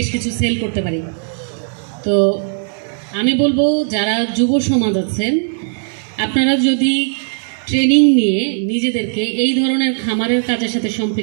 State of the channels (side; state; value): left; silent; digital silence